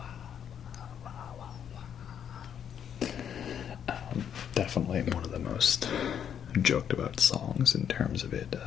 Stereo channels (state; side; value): quieter; right; 8.7 dB